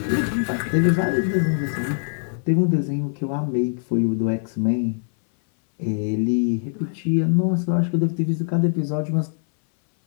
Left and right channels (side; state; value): right; silent; 60 dB below the other